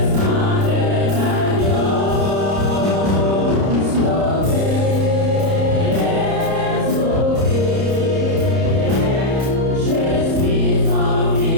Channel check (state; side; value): late; left; 30 ms